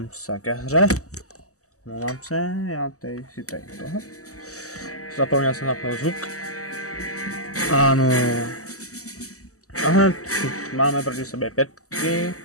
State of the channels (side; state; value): right; late; 0.66 ms